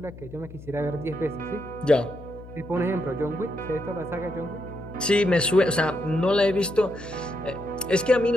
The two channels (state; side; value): noise; left; hum, 16 dB below the sound